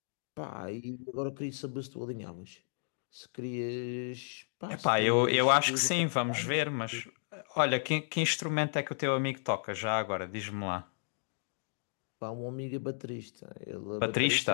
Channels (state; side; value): silent; right; digital silence